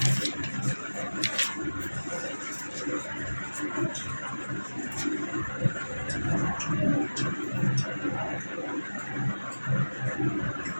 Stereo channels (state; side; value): inverted; both; correlation -1.00